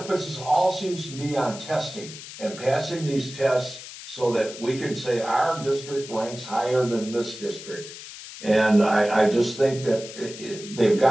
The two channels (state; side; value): noise; left; hiss, 13 dB below the sound